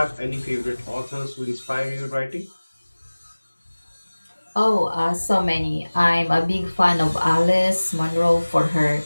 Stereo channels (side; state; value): both; inverted; correlation -1.00